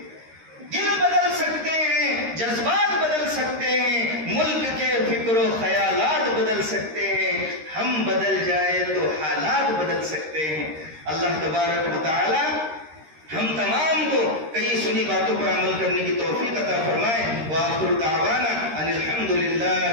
دل بدل سکتے ہیں، جذبات بدل سکتے ہیں، ملک کے فکر و خیالات بدل سکتے ہیں. ہم بدل جائے تو حالات بدل سکتے ہیں. اللہ تبارک و تعالی ہم تمام کو کئی سنی باتوں پر عمل کرنے کی توفیق عطا فرمائے. وآخر دعوانا ان الحمد للہ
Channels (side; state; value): left; late; 13 ms